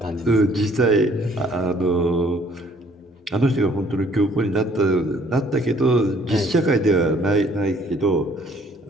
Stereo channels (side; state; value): both; normal; correlation 0.60